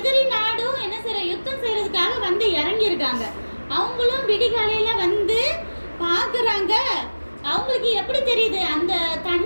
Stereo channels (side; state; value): both; inverted; correlation -1.00